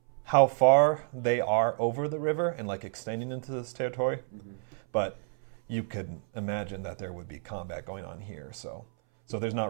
how far they are over the river and like extending into this territory, but you could imagine that there would be combat going on here. So there's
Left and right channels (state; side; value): silent; left; 58 dB below the other